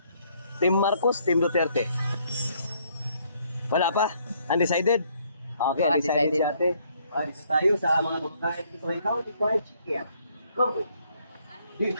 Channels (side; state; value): both; inverted; correlation -0.67